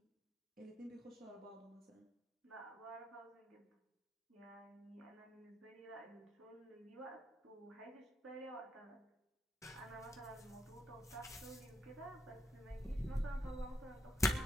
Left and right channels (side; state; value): both; normal; correlation 0.78